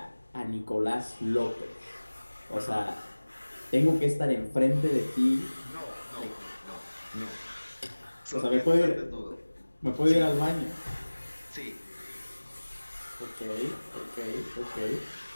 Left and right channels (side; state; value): both; inverted; correlation -1.00